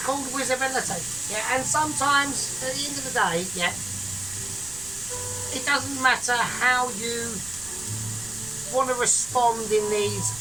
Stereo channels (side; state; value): right; noise; rumble, 18 dB below the sound